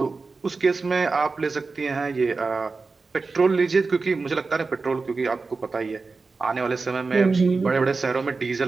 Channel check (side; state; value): left; quieter; 4.1 dB